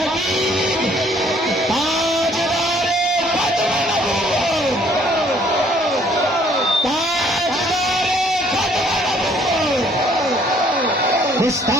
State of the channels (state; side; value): normal; both; correlation 0.62